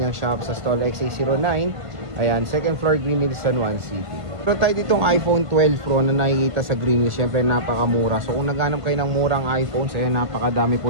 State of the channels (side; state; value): left; late; 1.5 ms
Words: shop sa stall XA09. Ayan, second floor, Green Hills, San Juan City. Pero tayo ditong iPhone 12 Pro na nakikita sa Green Hills, syempre napakamura. So kung naghanap kayo ng murang iPhone, so ayan, napakadami